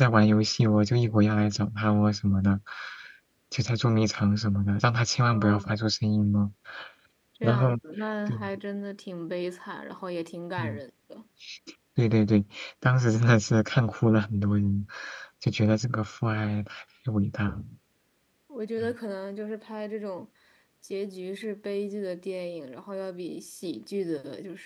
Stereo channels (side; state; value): both; identical; correlation 1.00